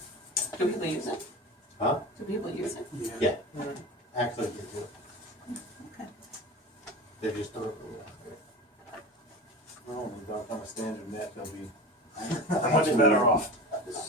Do people use it? Huh? Do people use it? Yeah, actually, they do. Okay. They just don't. Well, when we don't on a standard net, they'll be much better off. This,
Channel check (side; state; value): both; normal; correlation 0.30